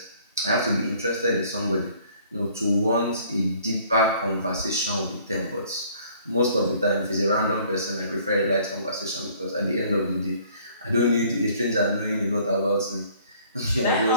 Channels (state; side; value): inverted; both; correlation -0.58